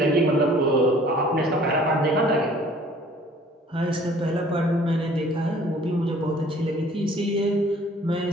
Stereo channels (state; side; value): normal; both; correlation 0.54